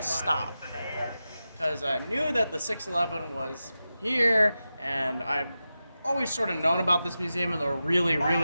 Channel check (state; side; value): inverted; both; correlation -0.92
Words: stop. Because I knew that the 611 was here, and I've always sort of known about this museum and the really,